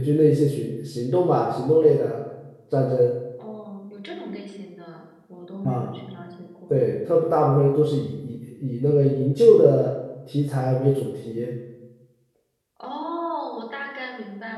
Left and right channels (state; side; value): identical; both; correlation 1.00